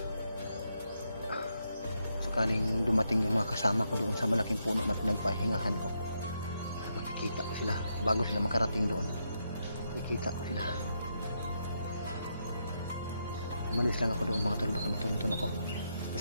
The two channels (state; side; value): inverted; both; correlation -0.81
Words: sakaling dumating yung mga kasama ko doon sa malaking puno na pinagpahingahan ko, makikita ko sila bago sila makarating doon. makikita ko sila. Umalis lang ako doon mga tol, baka matuntun ako.